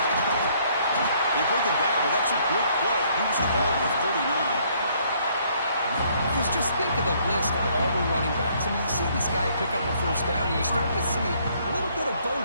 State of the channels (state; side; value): inverted; both; correlation -0.65